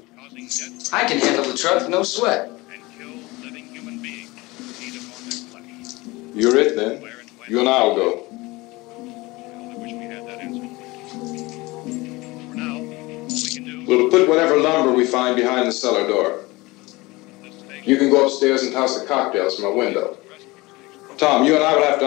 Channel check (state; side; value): quieter; right; 22.1 dB